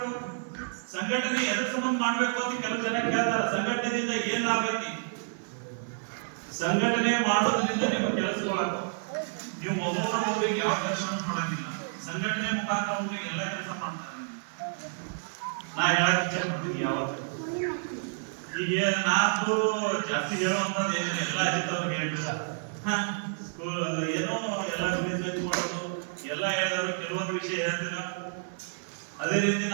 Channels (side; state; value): left; silent; digital silence